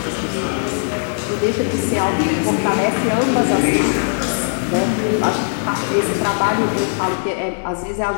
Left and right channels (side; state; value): right; silent; 58 dB below the other